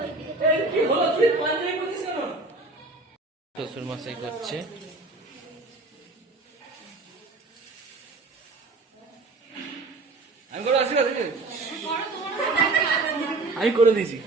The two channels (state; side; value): quieter; left; 3.3 dB